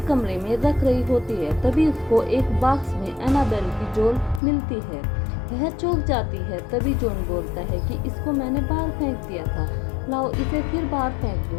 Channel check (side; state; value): right; drops out; at 4.4 s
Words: कमरे में रख रही होती है। तभी उसको एक बॉक्स में एनाबेल की डॉल मिलती है। वह चौंक जाती है। तभी जॉन बोलता है कि इसको मैंने बाहर फेंक दिया था, लाओ इसे फिर बाहर फेंक दो।